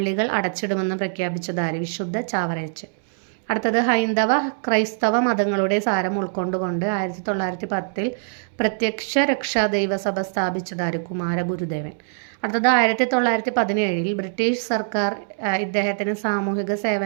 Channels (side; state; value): left; silent; 63 dB below the other